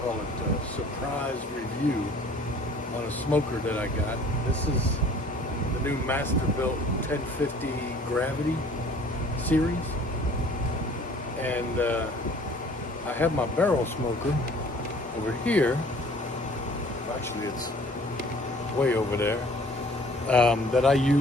it, surprise review on a smoker that I got. This is the new Masterbuilt 1050 Gravity Series, and I have my barrel smoker over here. Actually, it's way over there. That I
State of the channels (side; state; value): both; normal; correlation 0.52